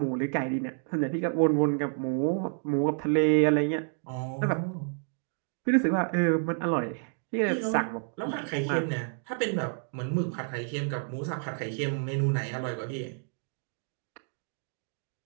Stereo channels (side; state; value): left; silent; 58 dB below the other